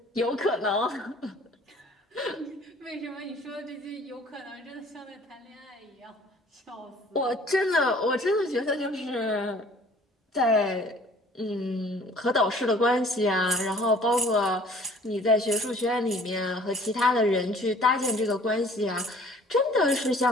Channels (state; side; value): normal; both; correlation 0.53